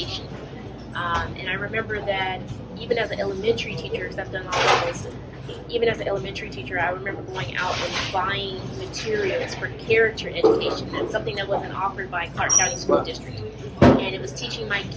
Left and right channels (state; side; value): identical; both; correlation 1.00